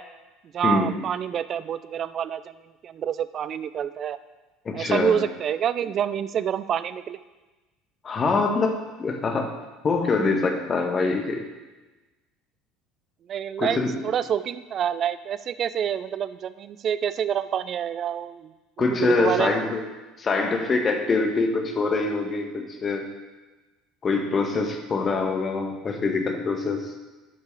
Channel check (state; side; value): normal; both; correlation 0.66